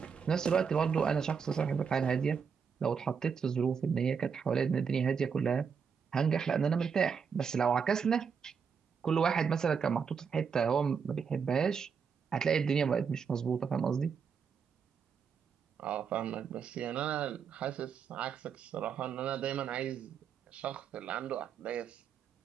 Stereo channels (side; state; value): left; quieter; 6.4 dB